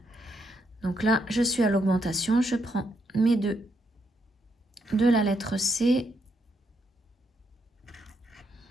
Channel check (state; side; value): normal; both; correlation 0.78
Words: Donc là, je suis à l'augmentation. Je prends mes 2 de la lettre C.